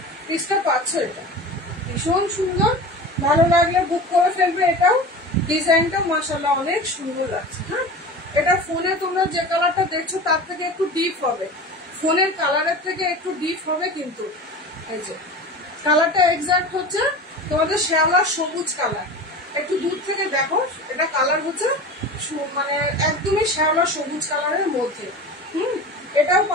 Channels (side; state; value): both; normal; correlation 0.33